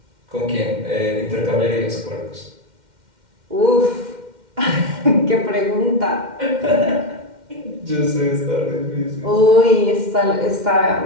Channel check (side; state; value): left; late; 2.1 ms